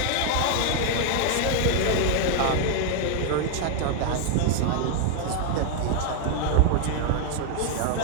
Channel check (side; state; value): both; different; correlation 0.00